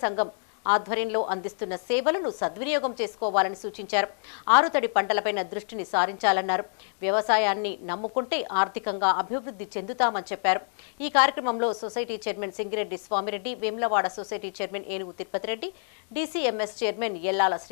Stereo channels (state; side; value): silent; right; digital silence